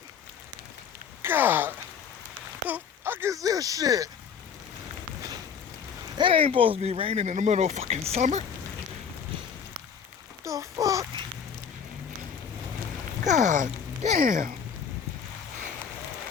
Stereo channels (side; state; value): right; quieter; 7.1 dB